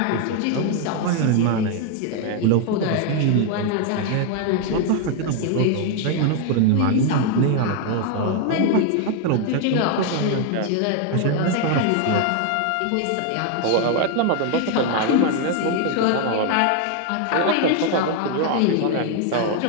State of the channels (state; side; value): different; both; correlation 0.01